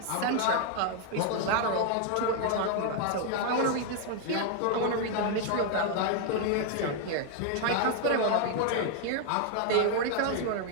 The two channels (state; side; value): different; both; correlation 0.00